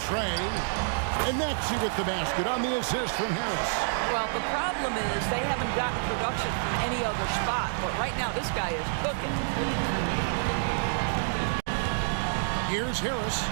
tray. And Maxey with the basket on the assist from Harris. Well, the problem is they haven't gotten production from any other spot, but right now this guy is cooking. Here's Harris.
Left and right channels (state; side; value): silent; left; digital silence